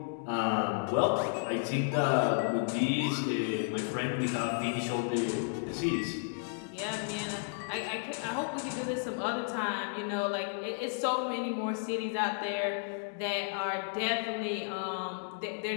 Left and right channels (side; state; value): right; silent; digital silence